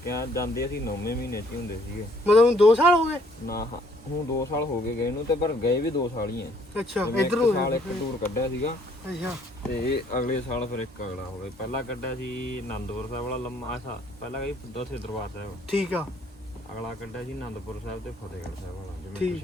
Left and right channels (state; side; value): normal; both; correlation 0.64